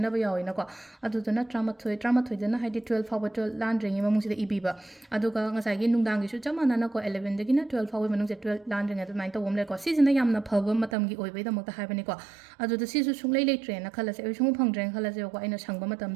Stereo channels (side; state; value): left; drops out; at 11.0 s